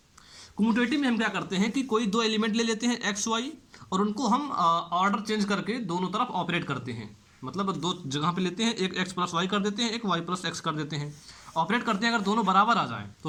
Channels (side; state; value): both; identical; correlation 1.00